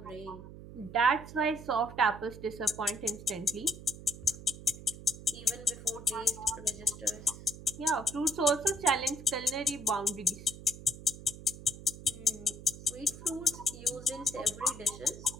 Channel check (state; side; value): noise; right; hum, 14 dB below the sound